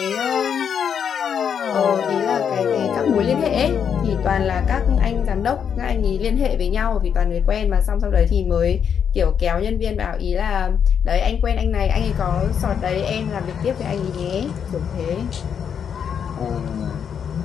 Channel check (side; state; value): right; quieter; 7.7 dB